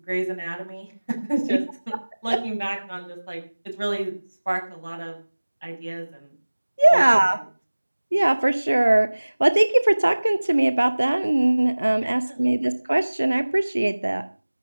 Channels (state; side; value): inverted; both; correlation -1.00